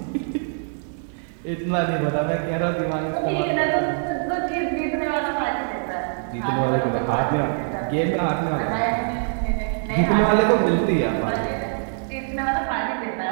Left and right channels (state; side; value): silent; left; digital silence